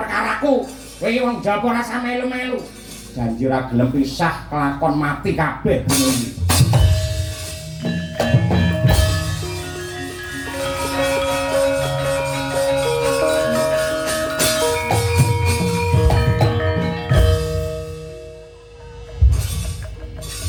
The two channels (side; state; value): both; identical; correlation 1.00